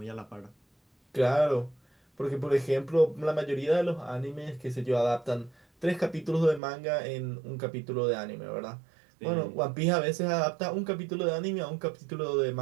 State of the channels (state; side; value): drops out; left; at 6.6 s